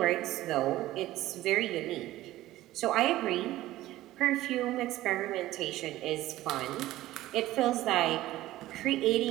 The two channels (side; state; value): left; quieter; 15.8 dB